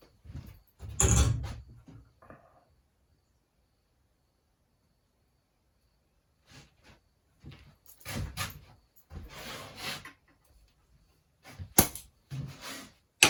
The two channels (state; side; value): identical; both; correlation 1.00